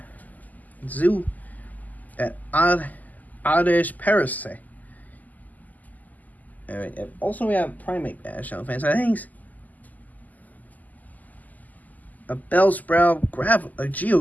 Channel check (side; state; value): right; late; 0.080 ms